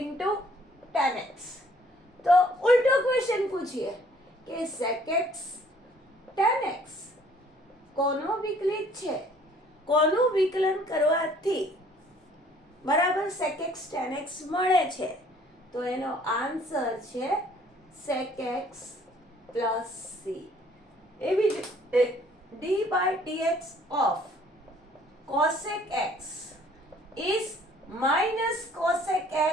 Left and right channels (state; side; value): normal; both; correlation 0.59